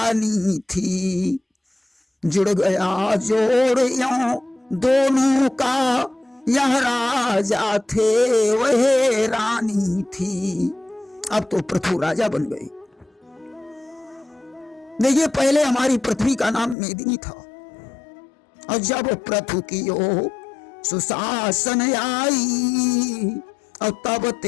थी। जुड़ गया जोड़ यों दोनों का, यह राजा थे वह रानी थी। अब तो पृथु राजा बन गए। देखिए, पहले हमारी पृथ्वी का नाम मेदिनी था, और जब पृथु की ओ सुशासन आई, और तब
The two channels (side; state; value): right; drops out; at 16.8 s